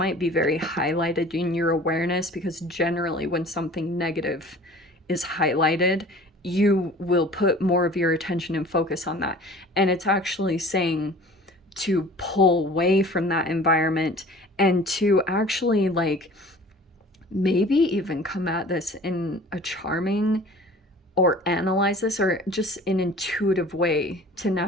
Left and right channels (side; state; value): both; normal; correlation 0.45